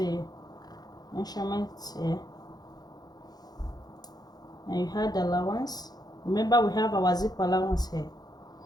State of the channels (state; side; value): late; right; 0.19 ms